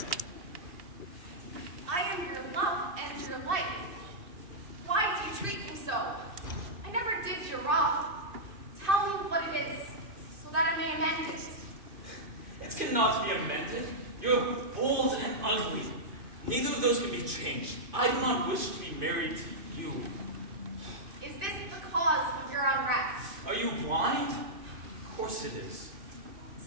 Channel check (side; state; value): left; late; 2.5 ms